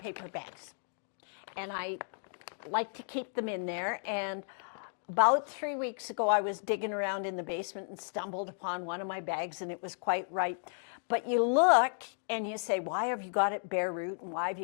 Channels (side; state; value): right; silent; digital silence